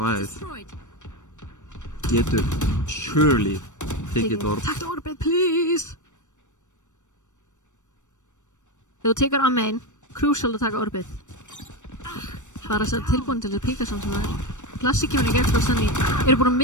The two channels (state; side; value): late; right; 0.85 ms